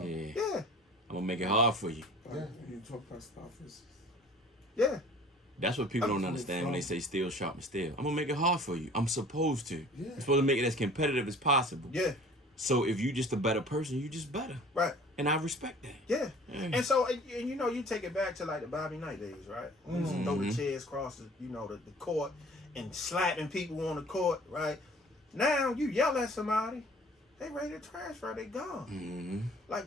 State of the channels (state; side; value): normal; both; correlation 0.48